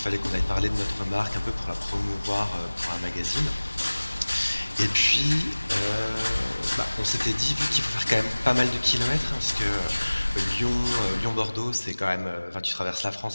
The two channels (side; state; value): both; inverted; correlation -1.00